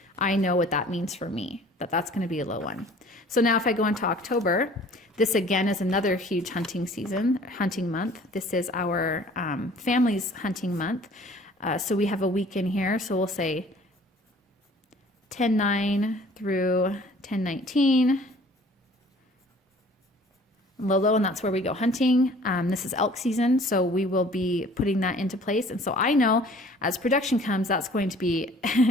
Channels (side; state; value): both; normal; correlation 0.51